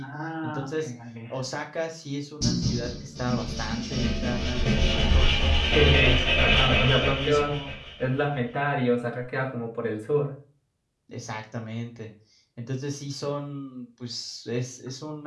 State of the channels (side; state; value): both; identical; correlation 1.00